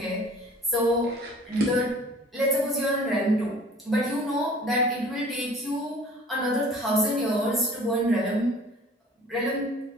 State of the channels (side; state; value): both; normal; correlation 0.49